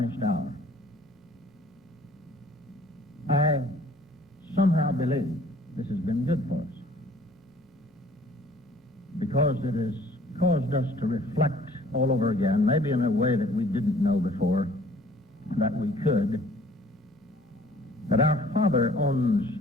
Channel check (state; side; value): normal; both; correlation 0.55